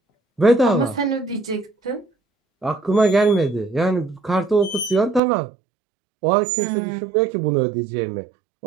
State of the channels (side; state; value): left; drops out; at 5.2 s